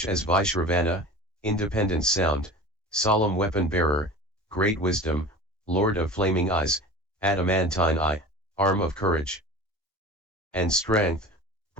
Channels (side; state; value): both; normal; correlation 0.36